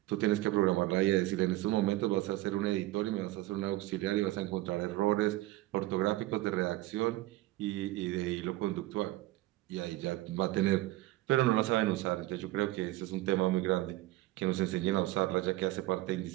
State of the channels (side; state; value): left; quieter; 17.3 dB